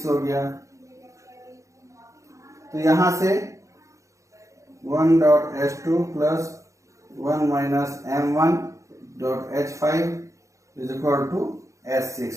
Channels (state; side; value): late; left; 0.15 ms